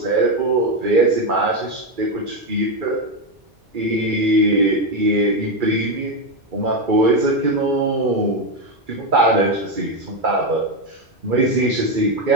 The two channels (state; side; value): normal; both; correlation 0.08